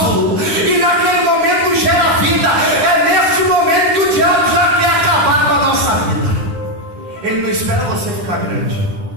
e naquele momento gera vida. É nesse momento que o diabo já quer acabar com a nossa vida. Ele não espera você ficar grande,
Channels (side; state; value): left; late; 9.6 ms